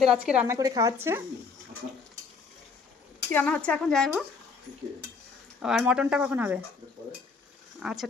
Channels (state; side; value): quieter; right; 4.9 dB